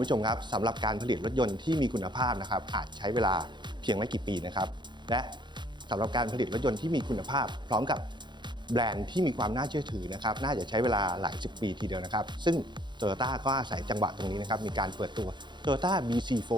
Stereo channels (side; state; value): left; late; 0.22 ms